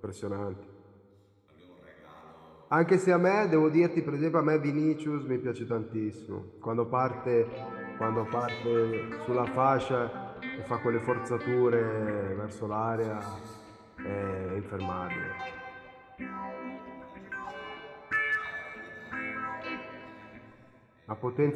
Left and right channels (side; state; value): both; identical; correlation 1.00